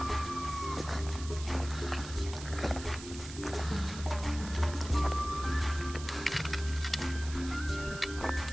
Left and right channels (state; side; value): noise; right; hiss, 13 dB below the sound